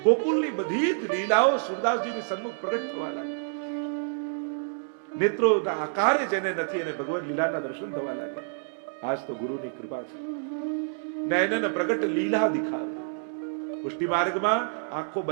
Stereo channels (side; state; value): left; silent; digital silence